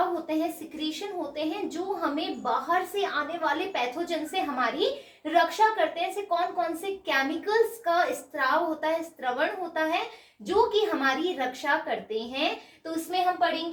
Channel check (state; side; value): identical; both; correlation 1.00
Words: होते हैं, सिक्रीशन होते हैं जो हमें बाहर से आने वाले पैथोजन से हमारी रक्षा करते हैं। ऐसे कौन कौन से केमिकल्स का स्त्राव होता है, स्त्रवण होता है जो कि हमारी रक्षा करते हैं। तो इसमें हम